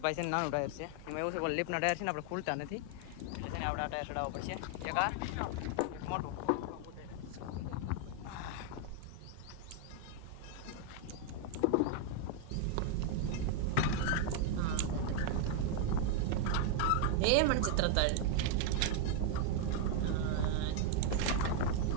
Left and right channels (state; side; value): different; both; correlation 0.00